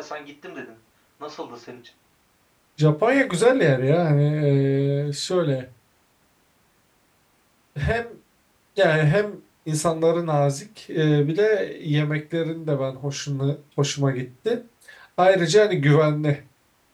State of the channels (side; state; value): both; identical; correlation 1.00